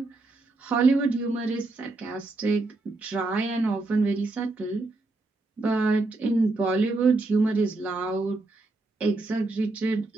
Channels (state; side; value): quieter; left; 3.2 dB